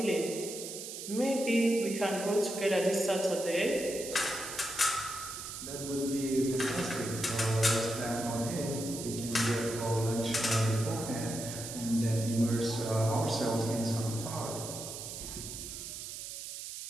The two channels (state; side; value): noise; right; hiss, 8 dB below the sound